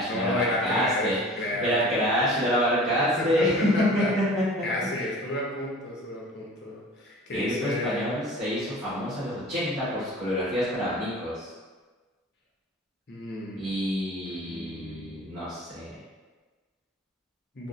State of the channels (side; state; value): both; normal; correlation 0.42